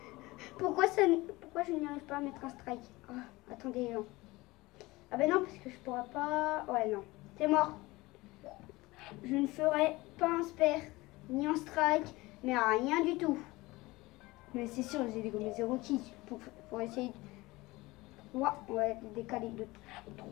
pourquoi je n'y arrive pas à mettre un strike? Ah, attendez, les gens. Ah ben non, parce que je pourrais pas... Ouais, non. C'est mort. Je ne ferai pas un spare, ni un strike, mais rien du tout. Mais c'est sûr, j'ai dégommé 0 keys pour essayer de... 3, on va décaler de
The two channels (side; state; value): right; quieter; 20.9 dB